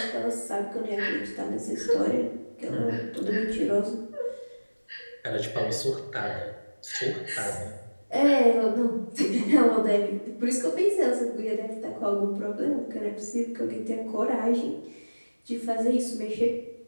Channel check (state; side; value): inverted; both; correlation -1.00